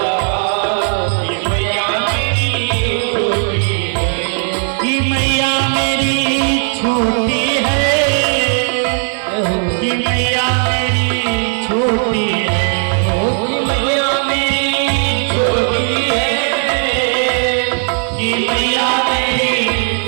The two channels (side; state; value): left; silent; 56 dB below the other